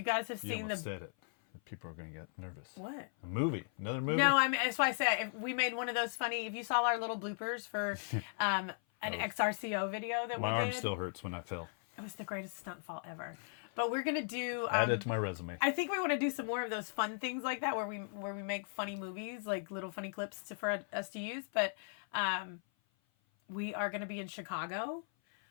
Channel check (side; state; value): right; silent; 53 dB below the other